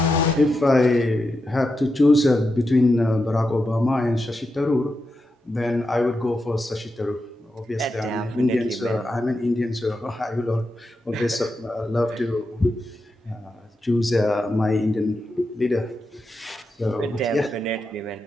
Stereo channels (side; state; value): both; normal; correlation 0.87